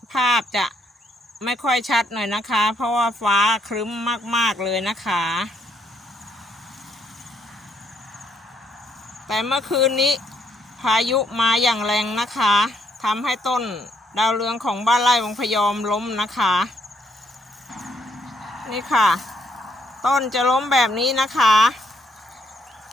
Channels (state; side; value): normal; both; correlation 0.72